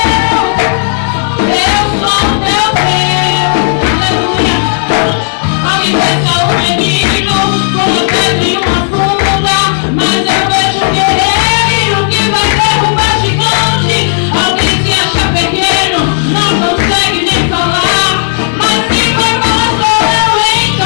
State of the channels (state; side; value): silent; right; digital silence